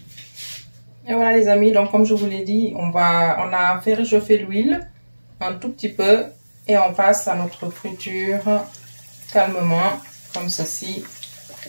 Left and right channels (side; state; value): both; inverted; correlation -1.00